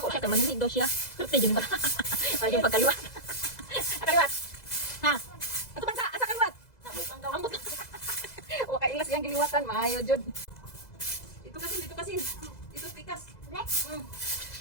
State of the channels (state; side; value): late; right; 2.0 ms